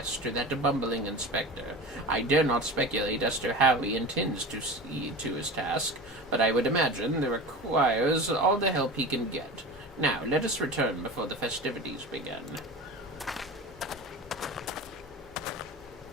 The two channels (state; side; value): normal; both; correlation 0.31